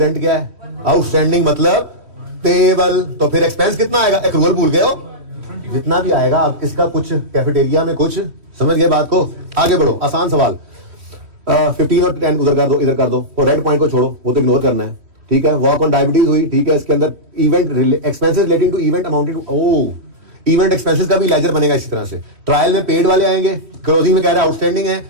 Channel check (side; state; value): left; late; 3.1 ms